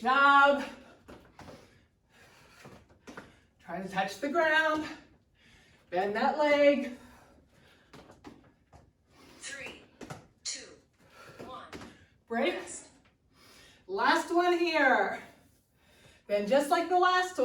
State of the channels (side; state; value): both; identical; correlation 1.00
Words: job. Try to touch the ground. Bend that leg. 3, 2, 1. Break. Rest. Last one here. Then just like the last